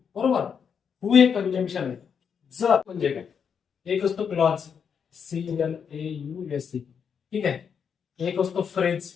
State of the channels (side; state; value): right; quieter; 7.0 dB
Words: बरोबर. हू हे कंजंक्शन आहे. जर म्हणजे काय? एक असतो क्लॉज, CLAUSE, ठीक आहे. एक असतो फ्रेज,